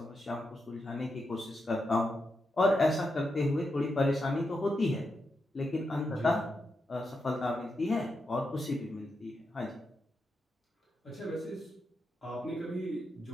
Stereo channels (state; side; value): normal; both; correlation 0.85